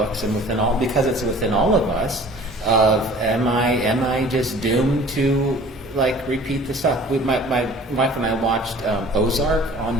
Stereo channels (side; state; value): both; normal; correlation 0.47